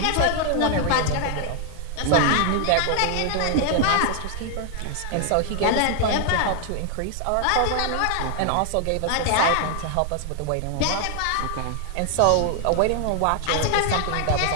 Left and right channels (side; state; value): both; different; correlation 0.00